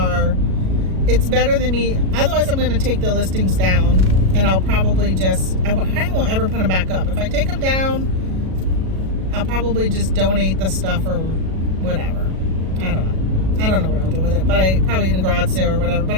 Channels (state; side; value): late; left; 37 ms